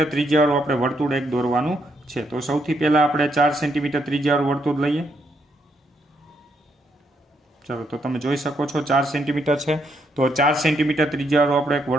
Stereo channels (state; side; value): normal; both; correlation 0.76